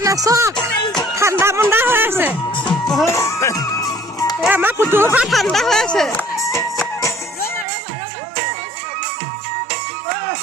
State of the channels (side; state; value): left; drops out; at 7.7 s